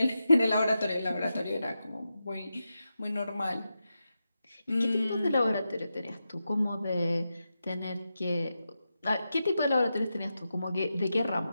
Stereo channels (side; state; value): both; inverted; correlation -0.89